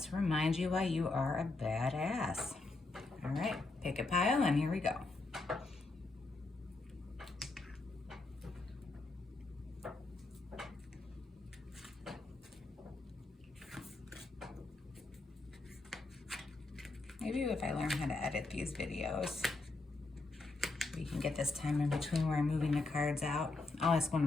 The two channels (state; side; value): quieter; right; 3.3 dB